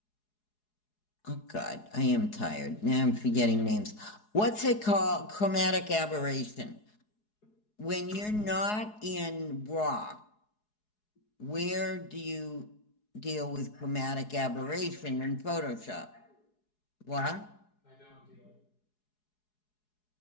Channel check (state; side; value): late; right; 4.7 ms